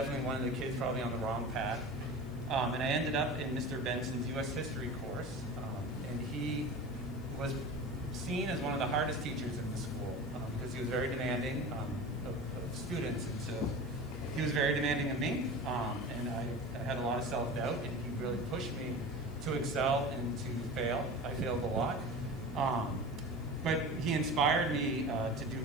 one of the kids probably on the wrong path. And I ended up in Mr. Benson's U.S. history course, and he was seen as one of the hardest teachers in the school because he was very demanding of students, and so he was very demanding of me, and I had a lot of self-doubt, and he really pushed me to excel and to fail. I failed a lot, but he inspired me to do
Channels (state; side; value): noise; right; hiss, 28 dB below the sound